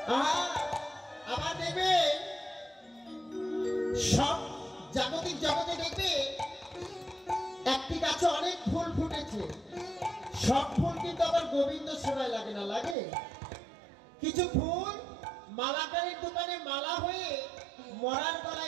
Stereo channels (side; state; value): left; drops out; at 13.0 s